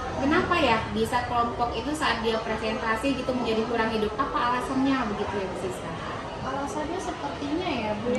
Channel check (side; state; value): both; identical; correlation 1.00